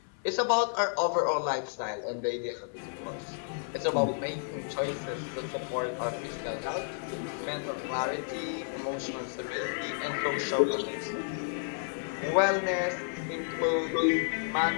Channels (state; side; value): silent; right; 57 dB below the other